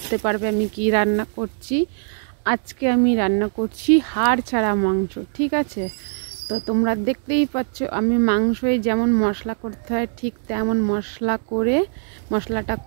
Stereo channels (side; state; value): left; silent; digital silence